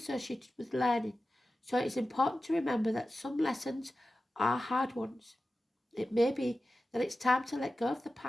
with learning, so it is important to remember that some lessons are hard ones. It may be that it's time to let go of the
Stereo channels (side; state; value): both; normal; correlation 0.94